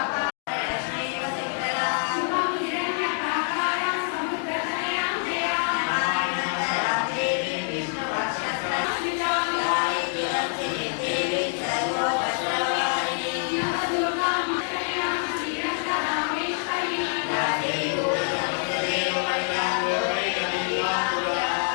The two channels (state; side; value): silent; right; 56 dB below the other